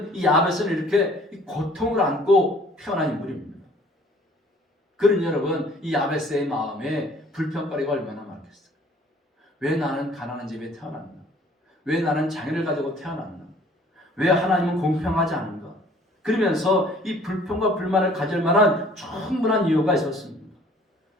이 야베스는 이렇게 이 고통을 안고 태어난 인물입니다. 그러니 여러분, 이 야베스의 마음에 불평거리가 얼마나 많겠어요? 왜 나는 가난한 집에 태어났나? 왜 나는 장애를 가지고 태어났나? 왜 하나님은 공평하지 않은가? 그러면서 이 불평과 불만을 가질 만한 충분한 이유가 있었습니다.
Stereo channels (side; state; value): both; normal; correlation 0.54